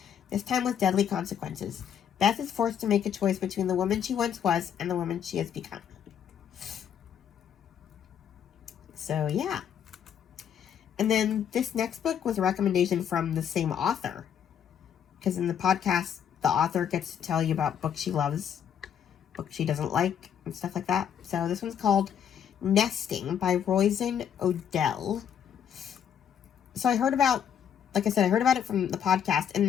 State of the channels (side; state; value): right; quieter; 8.7 dB